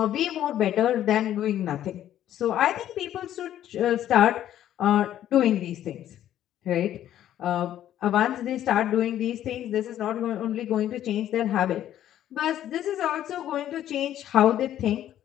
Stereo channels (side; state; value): right; quieter; 11.7 dB